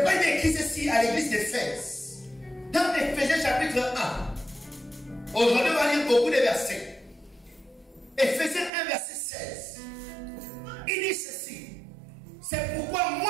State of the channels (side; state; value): left; drops out; at 8.7 s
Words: il est écrit ceci à l'église d'Éphèse. Dans Éphésiens chapitre 1. Aujourd'hui, on va lire beaucoup de versets. Éphésiens 1 verset 16. Il dit ceci: c'est pourquoi